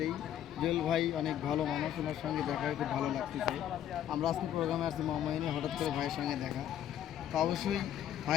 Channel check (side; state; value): right; quieter; 10.7 dB